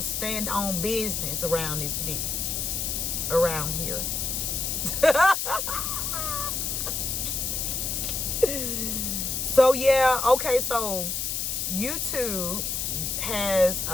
stand on business around this bit. Around here. So, yeah. Okay, so YouTube has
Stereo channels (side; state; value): left; noise; hiss, 1 dB below the sound